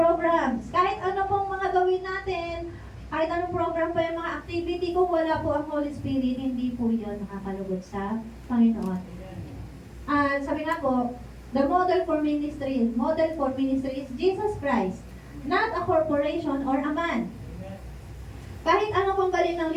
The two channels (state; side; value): identical; both; correlation 1.00